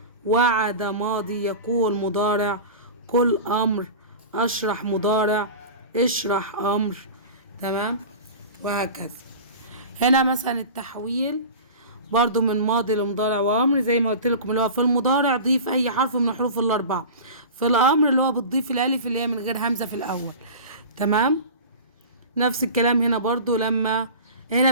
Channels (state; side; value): inverted; both; correlation -0.34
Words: وعد ماضي، يقول مضارع، قل امر، اشرح مضارع، اشرح امر. تمام. وهكذا. هنا مثلا التحويل برضو من ماضي لمضارع وامر زي ما قلت لكم، اللي هو في المضارع ضيف اي حرف من الحروف الاربعه، في الامر اللي هو بتضيف الالف اللي هي من غير همزه في الاول. تمام. نفس الكلام هنا برضو، لما هنا